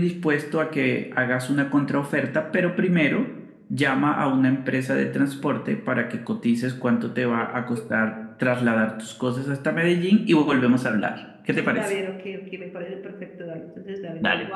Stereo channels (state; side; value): identical; both; correlation 1.00